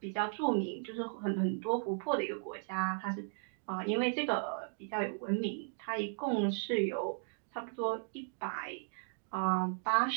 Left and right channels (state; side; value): silent; left; digital silence